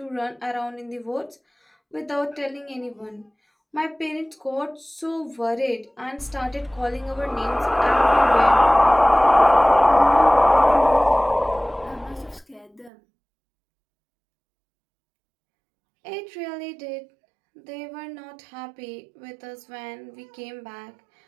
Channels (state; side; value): drops out; left; at 12.9 s